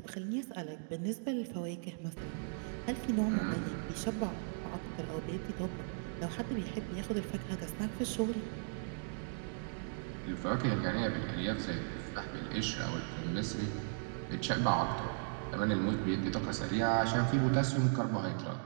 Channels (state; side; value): silent; left; digital silence